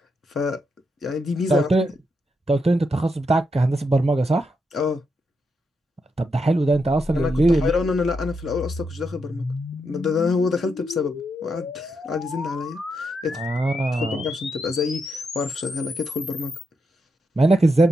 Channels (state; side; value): normal; both; correlation 0.82